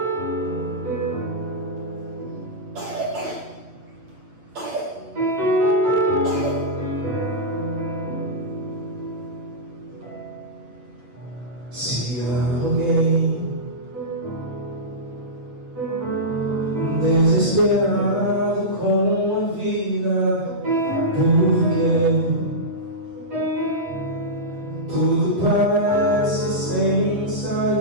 Se alguém desesperado com a vida, porque tudo parece sem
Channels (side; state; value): left; late; 8.4 ms